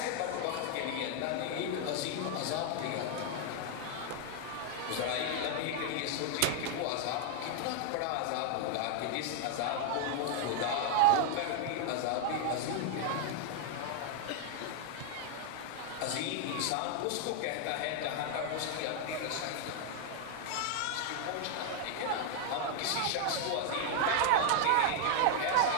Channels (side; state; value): both; different; correlation 0.00